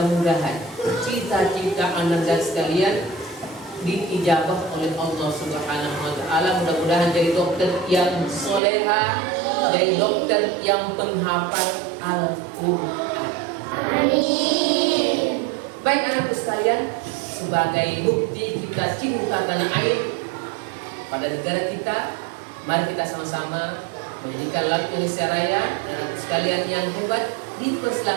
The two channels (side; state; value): left; drops out; at 8.6 s